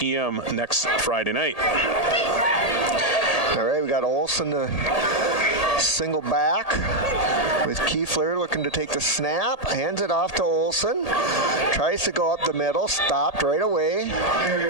next Friday night. All right, we got Olson to single back with Kiefler looking to take the snap, hands it off to Olson, tries to go up the middle, stopped right away.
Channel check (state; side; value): late; right; 1.8 ms